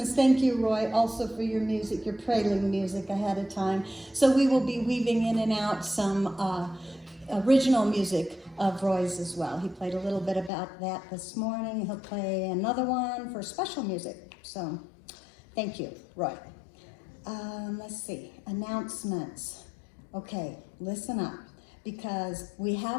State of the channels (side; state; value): right; drops out; at 10.5 s